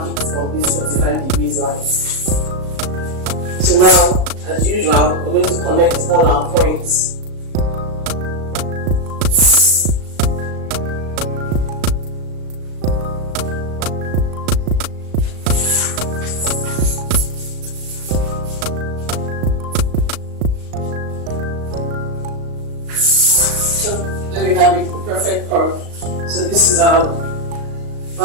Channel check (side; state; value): left; late; 37 ms